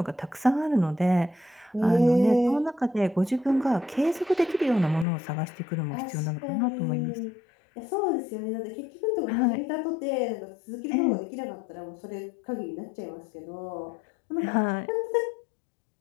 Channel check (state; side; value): drops out; right; at 5.1 s